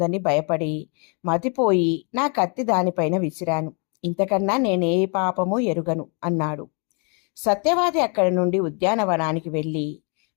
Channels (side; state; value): right; quieter; 37.0 dB